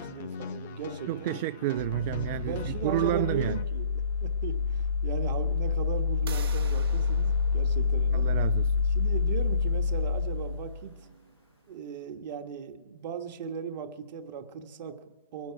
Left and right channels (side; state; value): both; inverted; correlation -0.53